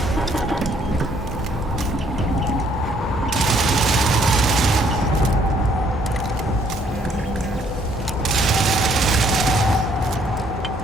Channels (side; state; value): both; normal; correlation 0.65